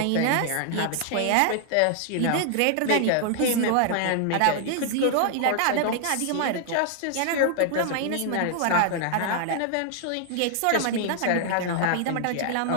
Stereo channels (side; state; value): both; different; correlation 0.00